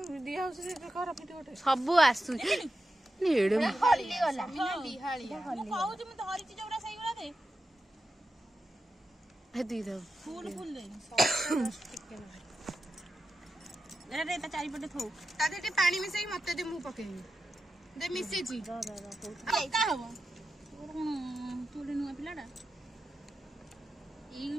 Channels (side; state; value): both; normal; correlation 0.91